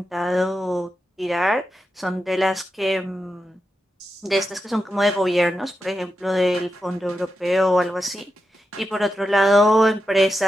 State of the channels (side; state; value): both; normal; correlation 0.88